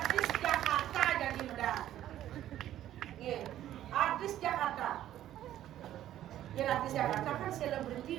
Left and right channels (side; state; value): left; quieter; 12.4 dB